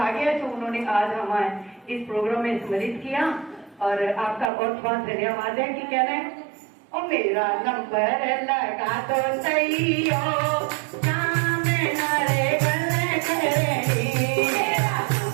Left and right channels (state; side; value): drops out; left; at 4.5 s